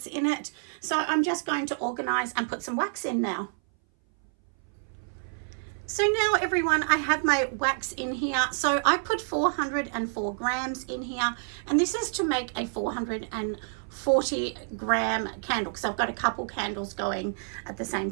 in it. So I'm just going to organize and put some wax in now. So now everyone, I have my wax in here. So I put 404 grams in here, and this is to make a 440 gram candle, because I've got a couple candles going at the same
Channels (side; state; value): left; silent; 58 dB below the other